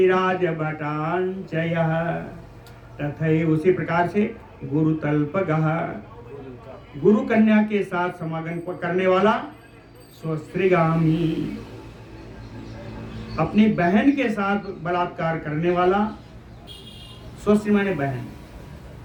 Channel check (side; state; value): both; identical; correlation 1.00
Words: राजभटांचयः। तथैव, उसी प्रकार से गुरुतल्पगः, गुरु कन्या के साथ समागम करने वाला। स्वश्रीगामी, अपनी बहन के साथ बलात्कार करने वाला। स्वश्री माने बहन।